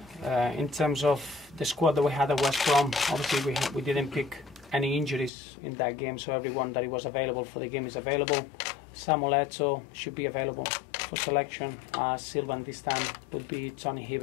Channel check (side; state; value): right; drops out; at 5.3 s